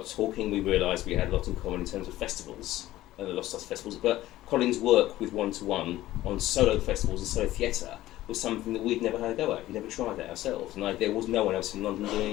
talking, we realised we had a lot in common in terms of festivals, the Lost Stars festivals, but Colin's work with one-to-one on solo festivals and solo theatre was something that we'd never had a go at. We'd never tried that ourselves, and there was no one else in London doing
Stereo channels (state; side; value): quieter; right; 15.4 dB